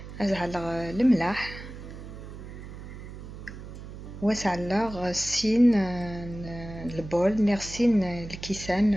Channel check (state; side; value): noise; right; hum, 12 dB below the sound